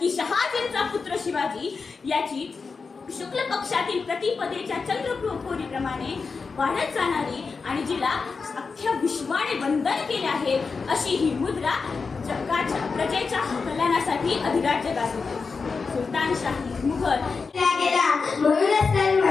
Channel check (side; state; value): right; quieter; 4.8 dB